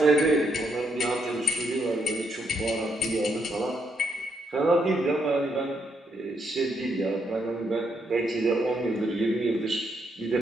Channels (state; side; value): normal; both; correlation 0.77